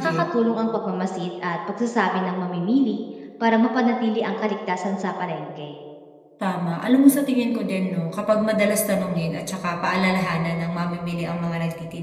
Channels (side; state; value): both; identical; correlation 1.00